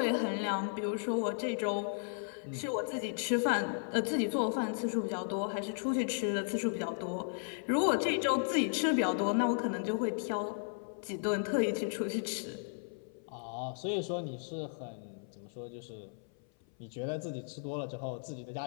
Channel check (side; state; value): right; silent; 54 dB below the other